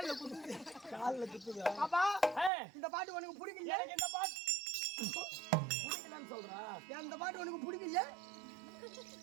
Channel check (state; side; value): drops out; left; at 2.5 s